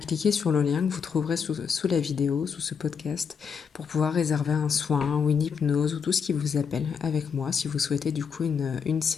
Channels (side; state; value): right; quieter; 6.5 dB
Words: sur le lien que vous trouverez sous la vidéo, sous ce podcast, pour pouvoir réserver un soin ou une hypnose ou tout ce qui vous appelle avec moi si vous souhaitez du coup une